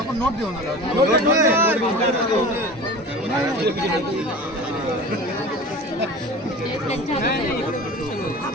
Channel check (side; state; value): both; normal; correlation 0.36